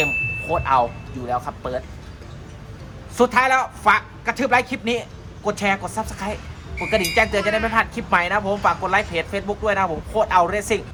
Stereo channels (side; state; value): both; identical; correlation 1.00